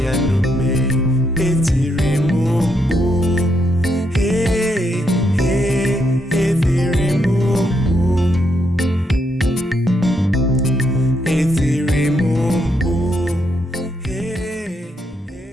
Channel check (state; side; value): normal; both; correlation 0.78